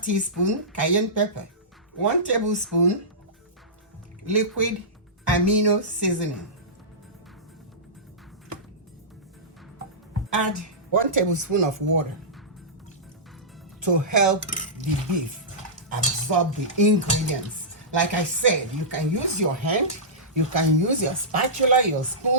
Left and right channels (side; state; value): both; normal; correlation -0.17